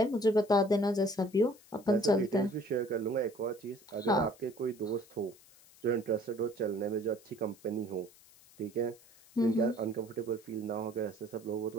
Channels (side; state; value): left; noise; hiss, 25 dB below the sound